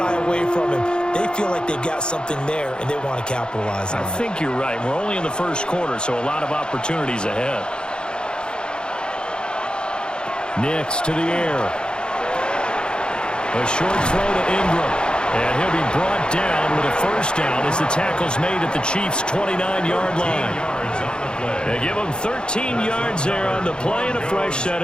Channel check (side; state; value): right; late; 0.050 ms